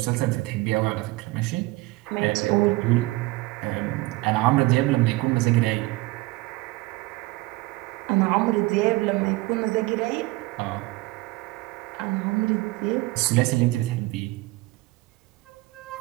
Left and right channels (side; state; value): left; quieter; 21.0 dB